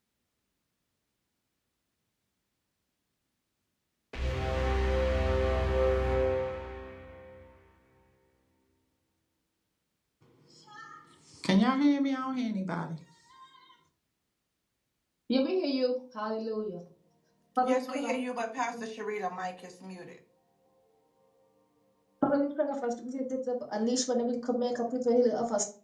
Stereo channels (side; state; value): both; identical; correlation 1.00